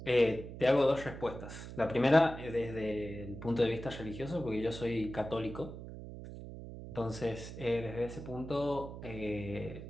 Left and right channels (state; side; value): noise; right; hum, 11 dB below the sound